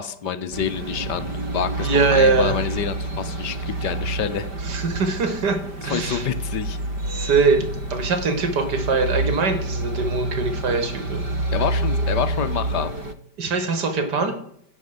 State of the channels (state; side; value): late; left; 5.1 ms